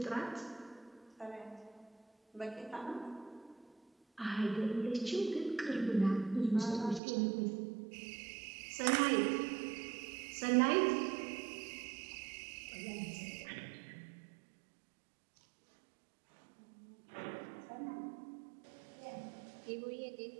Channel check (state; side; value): drops out; left; at 7.0 s